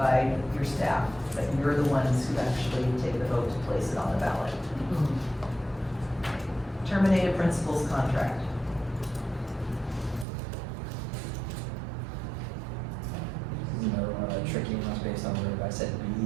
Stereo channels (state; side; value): drops out; left; at 10.2 s